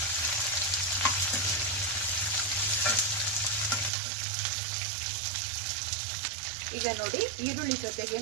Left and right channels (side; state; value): left; drops out; at 3.9 s